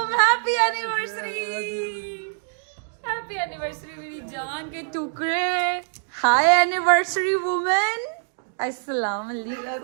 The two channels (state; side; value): silent; left; digital silence